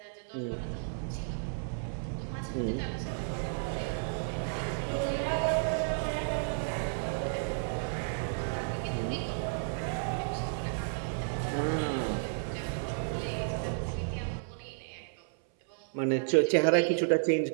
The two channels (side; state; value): left; silent; 56 dB below the other